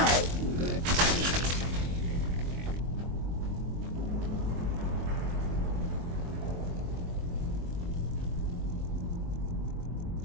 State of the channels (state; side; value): late; left; 23 ms